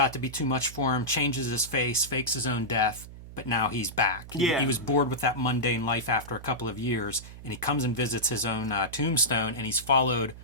to be too much for him. Changes his face, fakes his own death, but now he's back. He was bored with that mundane life after a couple of years, and he comes and visits his own tombstone, and he's followed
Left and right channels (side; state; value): right; noise; hum, 15 dB below the sound